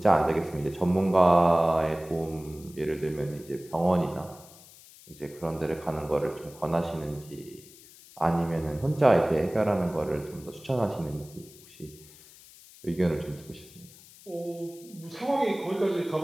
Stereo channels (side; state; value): left; noise; hiss, 22 dB below the sound